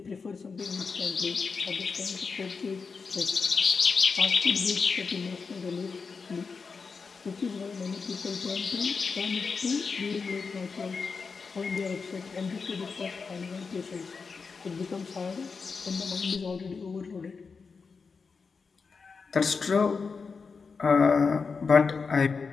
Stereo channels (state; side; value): quieter; right; 5.0 dB